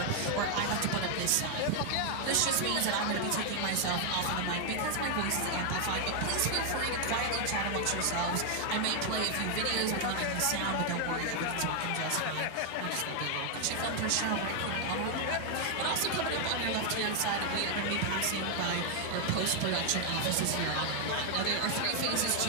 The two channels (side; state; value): both; different; correlation 0.00